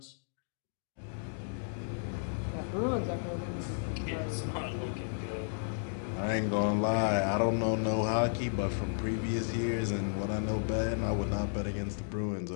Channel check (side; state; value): right; silent; digital silence